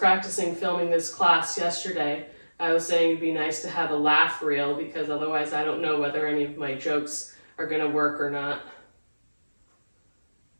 filming this class yesterday, I was saying it'd be nice to have a laugh reel, because otherwise I don't know whether any of my jokes are going to work or not.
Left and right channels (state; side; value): inverted; both; correlation -1.00